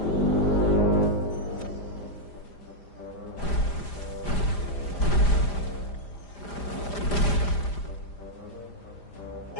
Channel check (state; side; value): late; right; 5.0 ms